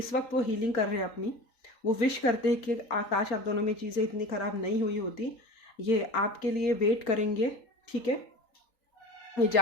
वक्त वो हीलिंग कर रहे हैं अपनी। वो विश करते हैं कि आकाश आप दोनों में चीज़ें इतनी ख़राब नहीं हुई होती। ये आपके लिए वेट करेंगे, ठीक है। ये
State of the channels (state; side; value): late; right; 3.9 ms